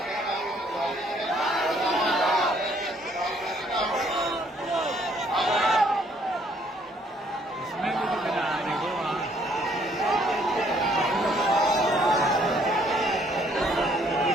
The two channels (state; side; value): normal; both; correlation 0.65